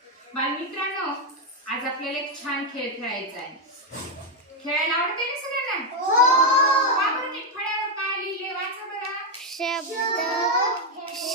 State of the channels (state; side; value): normal; both; correlation 0.03